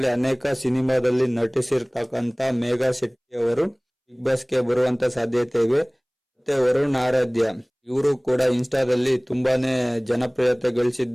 ಅನೇಕ ಸಿನಿಮಾದಲ್ಲಿ ನಟಿಸಿರ್ತಕ್ಕಂತ ಮೇಘಾ ಶೆಟ್ಟಿ ಅವರು ಬಿಗ್ ಬಾಸ್ಗೆ ಬರುವಂತ ಸಾಧ್ಯತೆ ಇವೆ. ಮತ್ತೆ ವರುಣ್ ಆರಾಧ್ಯ, ಇವರು ಕೂಡ ಇನ್ಸ್ಟಾದಲ್ಲಿ ತುಂಬಾನೇ ಜನಪ್ರಿಯತೆ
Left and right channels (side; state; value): both; identical; correlation 1.00